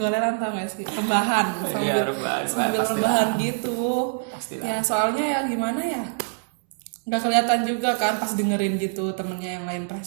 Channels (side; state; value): left; silent; 62 dB below the other